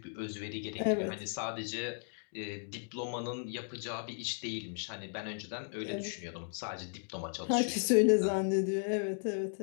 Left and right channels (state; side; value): silent; right; digital silence